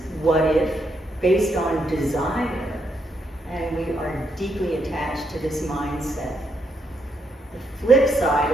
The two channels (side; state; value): both; normal; correlation 0.78